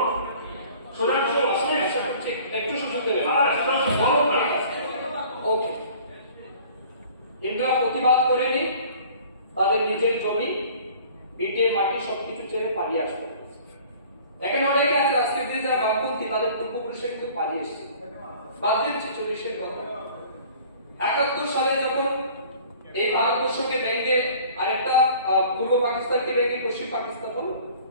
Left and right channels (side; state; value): both; inverted; correlation -0.49